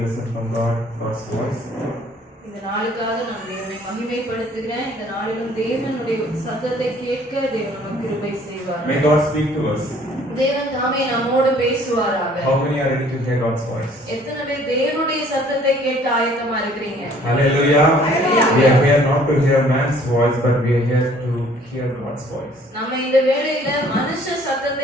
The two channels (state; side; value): normal; both; correlation 0.57